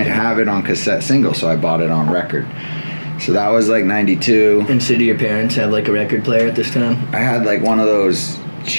have it on cassette single, so I bought it on record. So that was like 92. And so do your parents have like a record player at this time? I had like one of those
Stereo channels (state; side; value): inverted; both; correlation -1.00